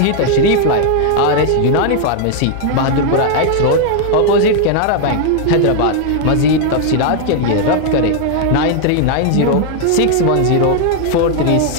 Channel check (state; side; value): different; both; correlation 0.00